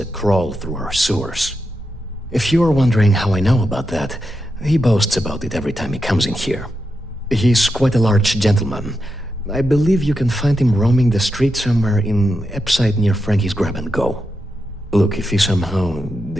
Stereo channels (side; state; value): both; normal; correlation 0.87